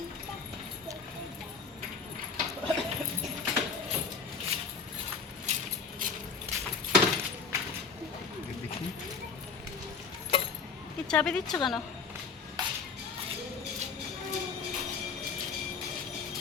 কি চাবি দিচ্ছ কেন?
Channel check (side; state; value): right; quieter; 5.2 dB